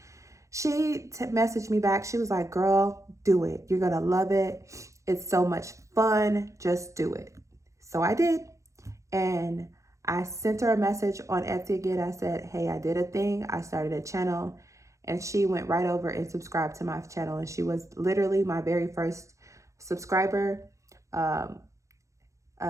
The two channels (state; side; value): late; left; 0.15 ms